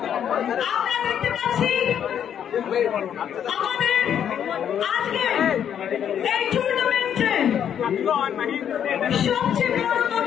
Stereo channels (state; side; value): quieter; right; 9.1 dB